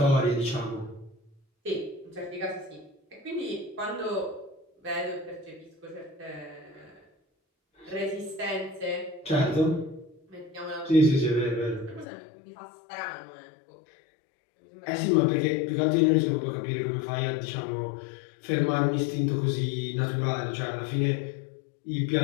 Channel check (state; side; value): drops out; right; at 12.1 s